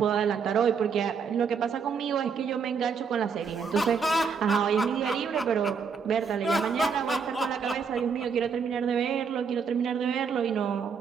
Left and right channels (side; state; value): left; quieter; 5.9 dB